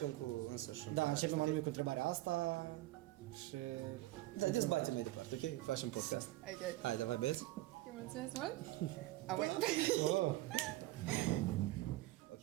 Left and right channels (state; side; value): quieter; left; 17.5 dB